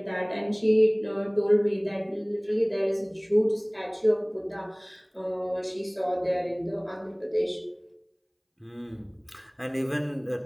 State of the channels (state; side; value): identical; both; correlation 1.00